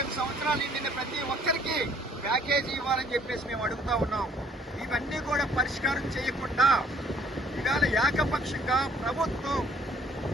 సంవత్సరాలు నిండిన ప్రతి ఒక్కరికి ప్యాకేజీ ఇవ్వాలని చెప్పేసి మేము అడుగుతా ఉన్నాం. ఇవన్నీ కూడా పరిష్కారం చేయకుండా ఇవాళ ఏకపక్షంగా ప్రభుత్వం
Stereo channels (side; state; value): both; normal; correlation 0.60